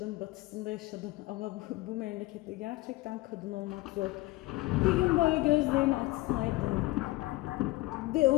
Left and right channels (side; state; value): right; quieter; 19.4 dB